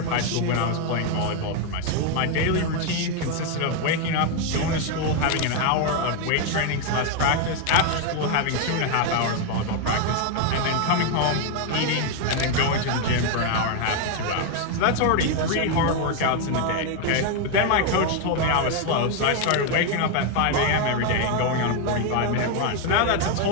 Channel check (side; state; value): both; different; correlation 0.01